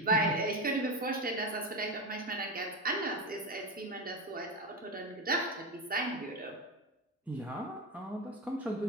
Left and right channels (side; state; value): both; normal; correlation 0.17